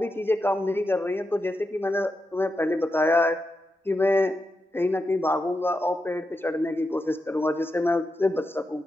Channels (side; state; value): both; normal; correlation 0.87